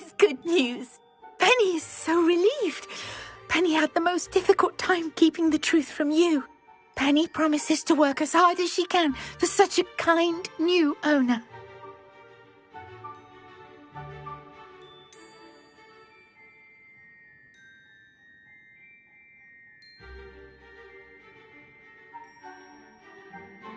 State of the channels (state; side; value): identical; both; correlation 1.00